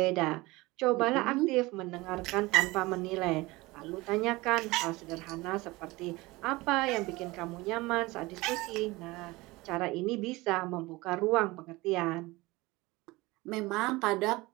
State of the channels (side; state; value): left; quieter; 21.5 dB